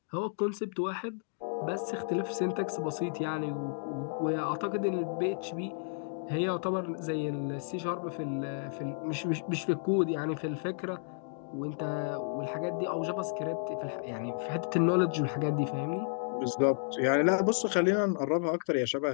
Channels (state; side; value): silent; right; digital silence